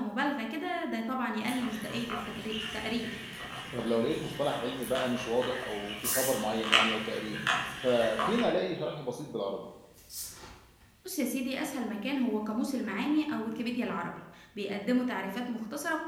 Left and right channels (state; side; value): identical; both; correlation 1.00